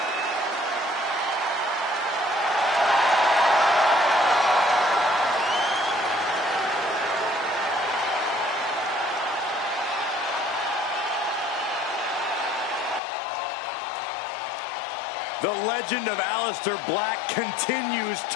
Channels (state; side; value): drops out; right; at 13.0 s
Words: The legend of Aleister Black continues